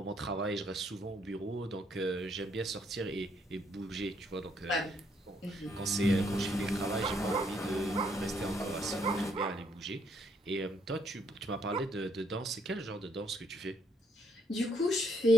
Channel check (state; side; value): normal; both; correlation 0.71